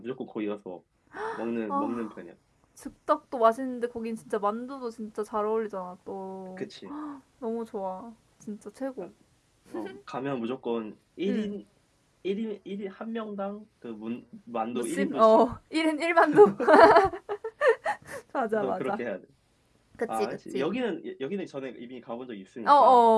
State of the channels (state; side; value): identical; both; correlation 1.00